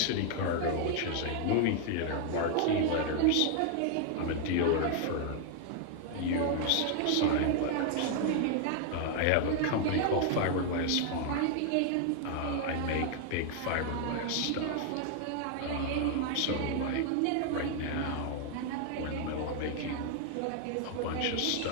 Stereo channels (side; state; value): both; different; correlation 0.00